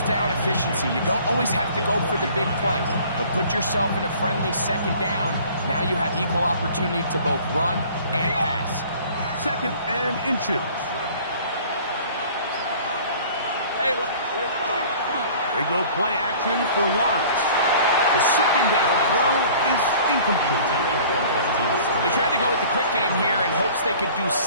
down efficiency. You don't always have to go for the big play, but put yourself in a friendly second down. Now you have equal opportunity to both run and pass. 2nd and inches. Hey, They go play action for Lawrence. The second down throw is incomplete. They tried to go with the quick game here in hopes they could do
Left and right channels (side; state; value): both; inverted; correlation -0.49